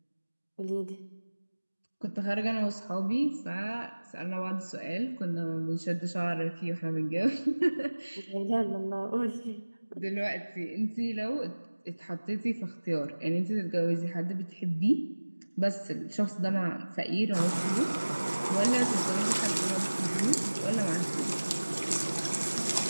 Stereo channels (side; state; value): both; inverted; correlation -1.00